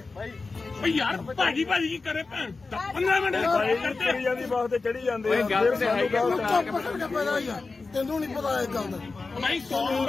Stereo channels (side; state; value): right; quieter; 3.9 dB